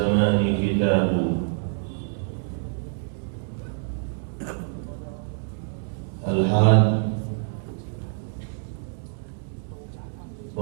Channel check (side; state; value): left; silent; 61 dB below the other